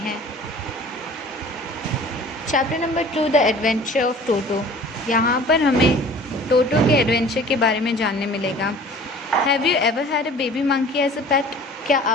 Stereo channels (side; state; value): both; normal; correlation 0.46